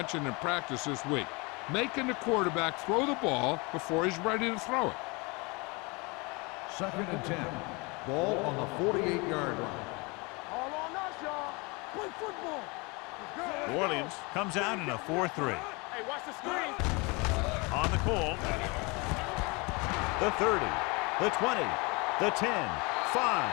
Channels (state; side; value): quieter; right; 27.8 dB